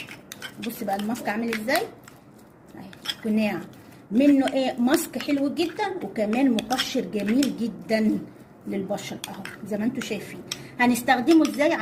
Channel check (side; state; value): both; identical; correlation 1.00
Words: بص بقى الماسك عامل ازاي اهي، قناع منه ايه، ماسك حلو جدا وكمان مقشر جميل جدا للبشره اهو زي ما انتم شايفين. هنستخدمه ازاي